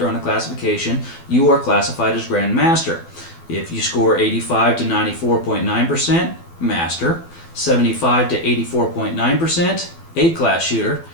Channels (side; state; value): right; late; 12 ms